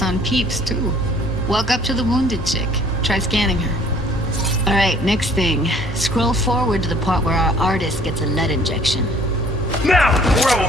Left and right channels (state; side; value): normal; both; correlation 0.56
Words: on peeps, too. Walk up to the wounded chick. Try scanning her. Alright, next thing. Scroll forward to the part where our artist gets a lead injection. Now, or I will